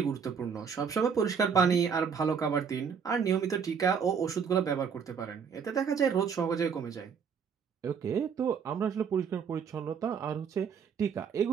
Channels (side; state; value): left; quieter; 6.6 dB